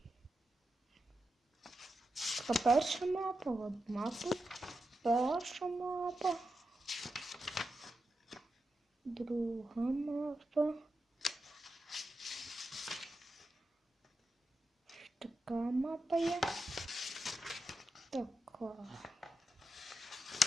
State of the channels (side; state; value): both; normal; correlation 0.88